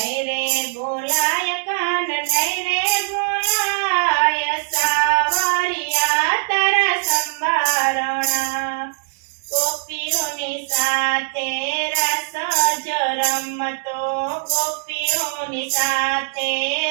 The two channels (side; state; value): left; silent; digital silence